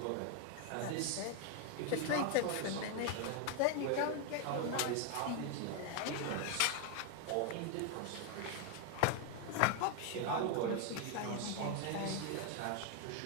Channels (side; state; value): both; different; correlation 0.01